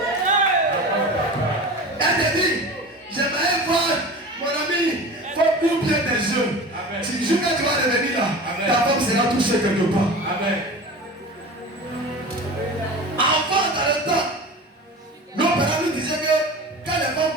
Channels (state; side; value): normal; both; correlation 0.34